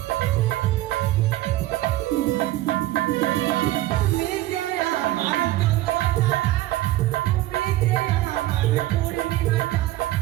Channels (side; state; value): left; quieter; 16.0 dB